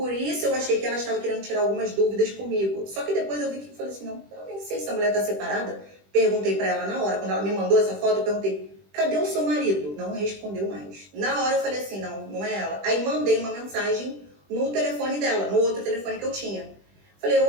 isso eu achei que ela estava querendo tirar algumas dúvidas comigo. Só que depois eu vi que eu falei assim, não, eu nem sei se a mulher tá separada. Perguntei para ela na hora, quando ela me mandou essa foto, eu perguntei, cadê o seu marido? Não respondeu mais. Na hora eu falei assim, não é ela. Aí mandei uma mensagem no telefone dela, no outro telefone que eu tinha. Falei,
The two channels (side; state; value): left; late; 20 ms